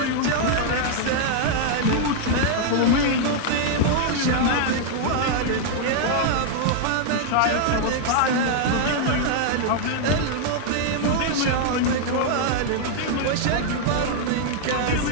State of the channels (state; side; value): different; both; correlation 0.00